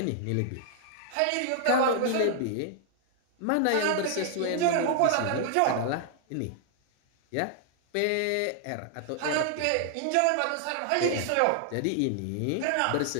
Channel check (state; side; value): different; both; correlation 0.00